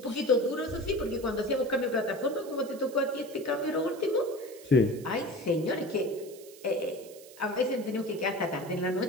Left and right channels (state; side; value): noise; right; hiss, 20 dB below the sound